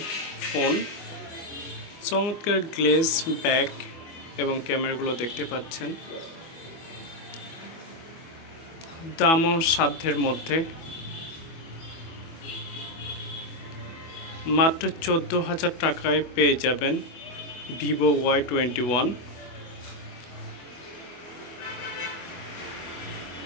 ফোন। চমৎকার গ্লেজ ব্যাক এবং ক্যামেরাগুলো দেখতে পাচ্ছেন। দামও সাধ্যের মধ্যে, মাত্র 14,000 টাকায় পেয়ে যাবেন ভিভো Y21।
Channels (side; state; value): right; late; 24 ms